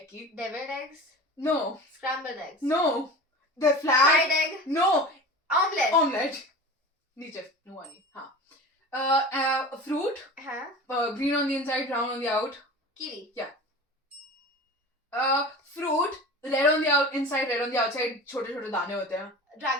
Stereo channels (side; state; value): both; normal; correlation 0.34